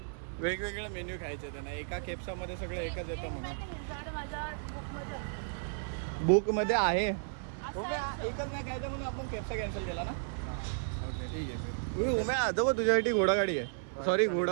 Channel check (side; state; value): left; silent; digital silence